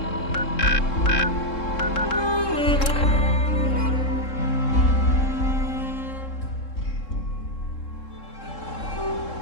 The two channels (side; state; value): right; late; 3.7 ms